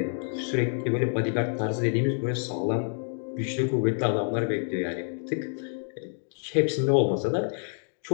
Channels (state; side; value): silent; right; 60 dB below the other